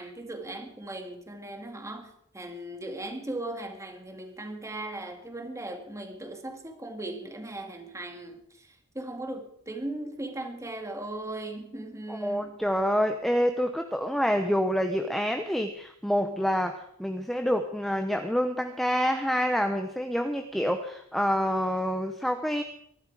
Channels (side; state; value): both; normal; correlation 0.86